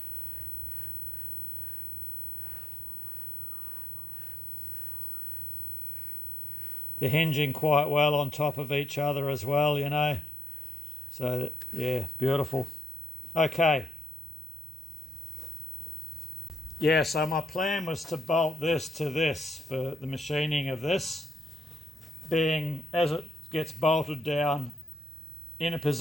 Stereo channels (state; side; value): normal; both; correlation 0.82